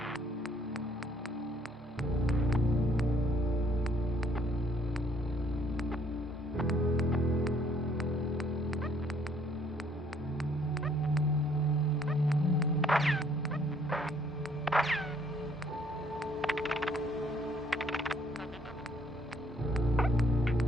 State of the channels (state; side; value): normal; both; correlation 0.64